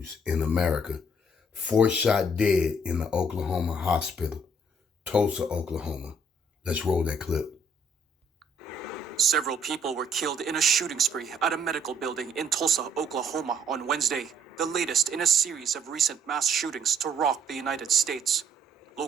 in America. 4 shot dead in the Oklahoma hospital, Tulsa, Oklahoma. Let's roll that clip. Several people were killed in a shooting spree at a medical building in Tulsa, Oklahoma on Wednesday, the latest in a series of recent mass shootings to rock the United States.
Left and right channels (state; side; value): normal; both; correlation 0.65